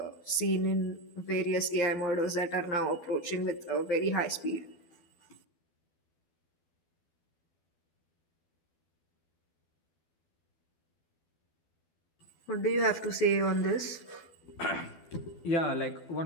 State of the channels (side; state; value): right; late; 12 ms